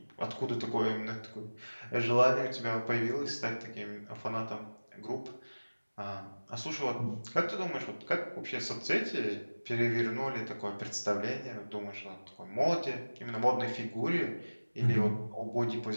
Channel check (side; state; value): both; inverted; correlation -1.00